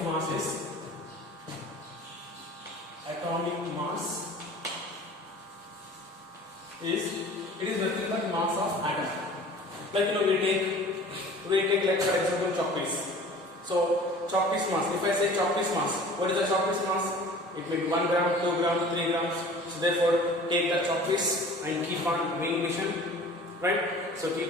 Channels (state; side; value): normal; both; correlation 0.44